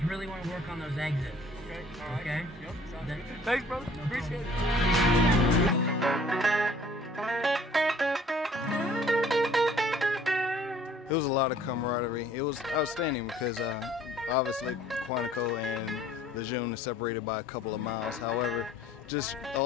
really want to work on those exits. Okay. All right. Okay. Yep. Thanks, brother. No Appreciate it. It was a lot of camaraderie. It was outstanding because obviously Quantico and Lejeune are separated by a couple of miles. However, just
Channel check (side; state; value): both; normal; correlation 0.55